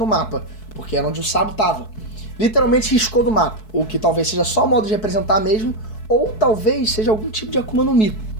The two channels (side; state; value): right; late; 4.6 ms